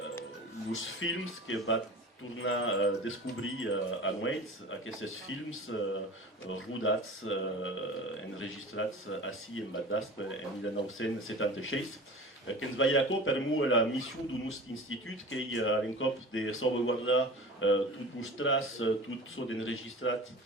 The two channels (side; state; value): both; normal; correlation 0.37